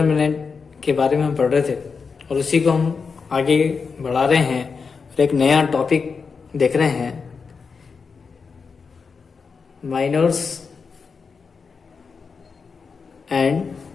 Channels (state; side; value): quieter; right; 5.2 dB